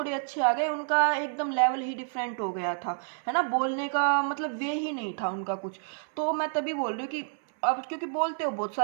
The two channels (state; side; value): silent; left; 57 dB below the other